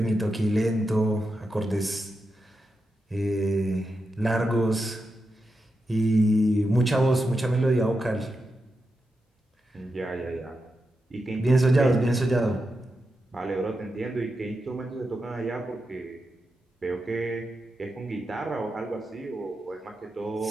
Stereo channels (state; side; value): normal; both; correlation 0.88